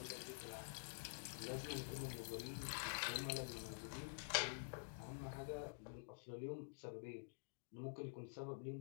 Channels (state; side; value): silent; right; digital silence